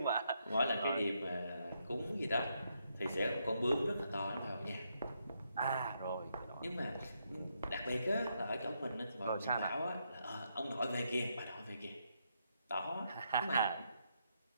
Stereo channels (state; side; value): inverted; both; correlation -0.79